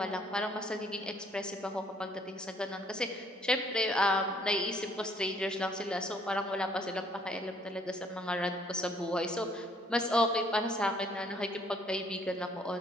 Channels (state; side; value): normal; both; correlation 0.63